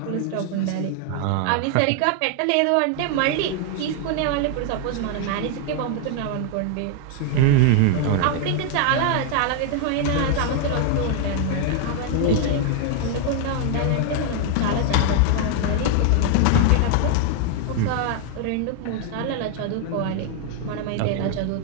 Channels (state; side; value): different; both; correlation 0.00